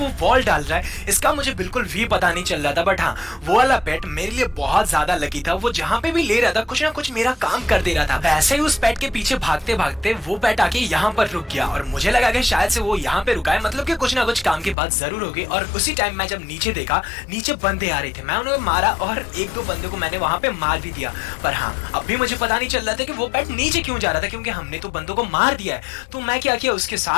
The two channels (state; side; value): drops out; right; at 14.8 s